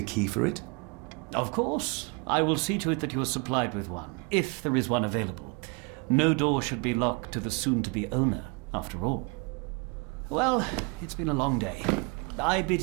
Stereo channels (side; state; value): left; quieter; 31.3 dB